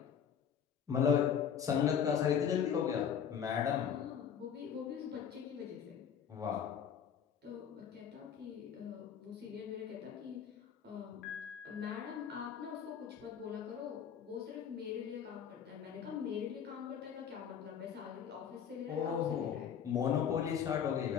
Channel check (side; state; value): right; quieter; 8.1 dB